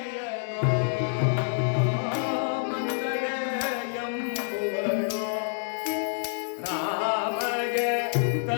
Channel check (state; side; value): silent; right; digital silence